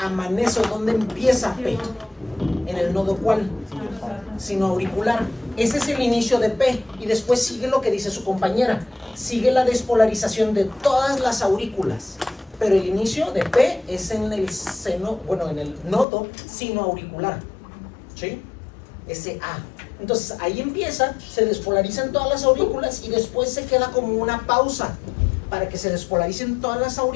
o dónde empieza P? ¿En el nodo cuál? Sino auricular. Ese es el inicio de P y después sigue lo que dice su compañera. Sigue la despolarización de todas las aurículas. Pero el inicio de P es en el seno, bueno, en el nodo sino auricular. ¿Sí? Ese A. Entonces ahí empieza, se despolarizan todas las aurículas y después se queda como una pausa para que se despolaricen todas las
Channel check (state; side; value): drops out; right; at 16.1 s